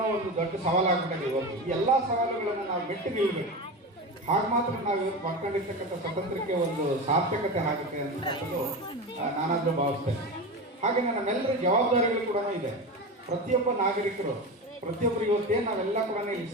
ಒಂದು ದೊಡ್ಡ ಸವಾಲಾಗ್ಬಿಟ್ಟಿದೆ. ಇವತ್ತು ಈ ಎಲ್ಲ ಸವಾಲುಗಳನ್ನು ನಾವು ಮೆಟ್ಟಿ ನಿಲ್ಲಬೇಕು. ಹಾಗೆ ಮಾತ್ರ ನಾವು ಇವತ್ತು ಮಾಡ್ಕೊಂಡಿರ್ತಕ್ಕಂಥ ಸ್ವತಂತ್ರಕ್ಕೆ ಒಂದು ಸಾರ್ಥಕತೆ ಆಗುತ್ತೆ ಅಂತಕ್ಕಂಥದ್ದು ನಾನಾದರೂ ಭಾವಿಸ್ತೇನೆ. ಹಾಗೆ ನಮ್ಮೆಲ್ಲರ ಜವಾಬ್ದಾರಿಗಳು ಕೂಡ ಇದೆ. ಪ್ರತಿಯೊಬ್ಬ ನಾಗರಿಕರು, ಪ್ರತಿಯೊಬ್ಬರು ಇವತ್ತೇನು ನಾವೆಲ್ಲ ಕೂಡ ಇಲ್ಲಿ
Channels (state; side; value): normal; both; correlation 0.23